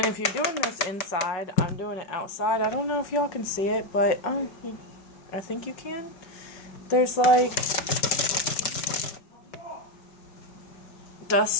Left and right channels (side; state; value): right; late; 5.4 ms